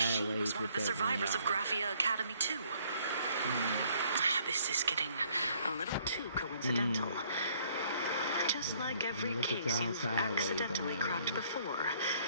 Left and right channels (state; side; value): inverted; both; correlation -0.63